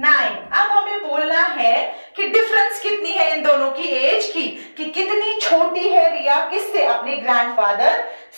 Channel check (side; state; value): both; inverted; correlation -1.00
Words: अब हमें बोलना है कि डिफरेंस कितनी है इन दोनों की एज की, कि कितनी छोटी है रिया किससे? अपने ग्रैंडफादर